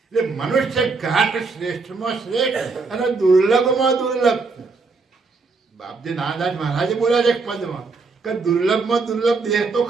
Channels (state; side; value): quieter; left; 4.2 dB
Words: એટલે મનુષ્ય ઘાટ શ્રેષ્ઠમાં શ્રેષ્ઠ અને દુર્લભમાં દુર્લભ. બાપજી નાનદાસ મહારાજે બોલ્યા છે એક પદમાં કે દુર્લભમાં દુર્લભ દેહ તો